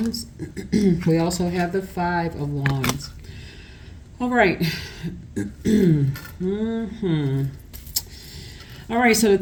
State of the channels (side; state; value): both; identical; correlation 1.00